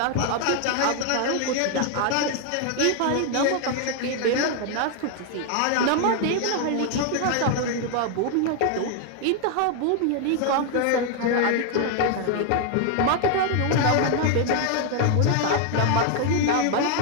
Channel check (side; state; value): both; different; correlation 0.00